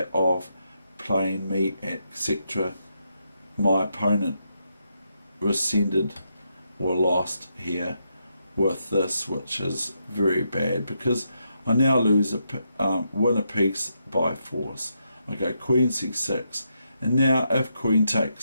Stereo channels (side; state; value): both; inverted; correlation -0.81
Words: of playing me, etc., my opponent rescinded or lost here with this, which is very bad, because I now lose win a piece by force. I go queen c6, and now if queen